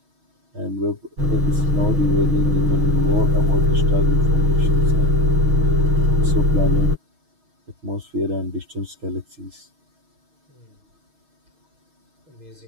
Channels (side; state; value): left; late; 6.3 ms